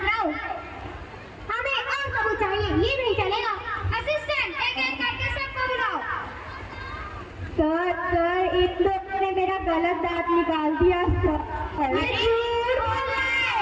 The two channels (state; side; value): identical; both; correlation 1.00